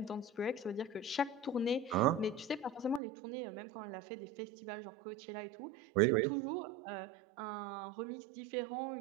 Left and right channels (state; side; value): drops out; left; at 3.0 s